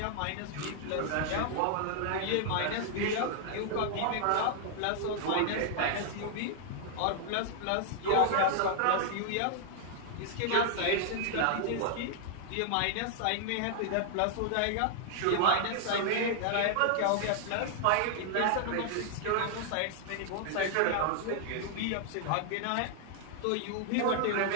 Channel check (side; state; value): both; different; correlation 0.00